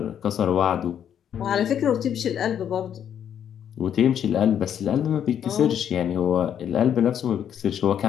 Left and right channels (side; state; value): right; quieter; 9.2 dB